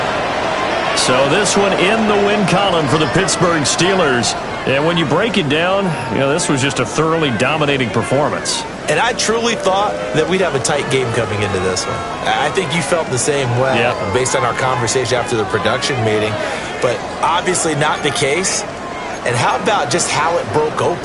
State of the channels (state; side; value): identical; both; correlation 1.00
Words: So this one in the win column for the Pittsburgh Steelers. And when you break it down, you know, this was just a thoroughly dominating performance. And I truly thought that we'd have a tight game coming into this one. I think you felt the same way based on our conversation after the production meeting. But obviously not the case. And how about just how it broke